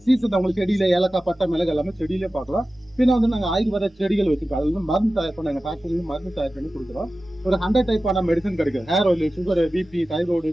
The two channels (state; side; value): normal; both; correlation 0.95